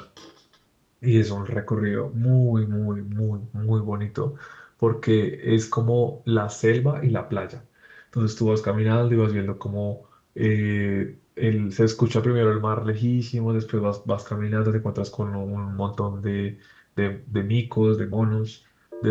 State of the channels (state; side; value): identical; both; correlation 1.00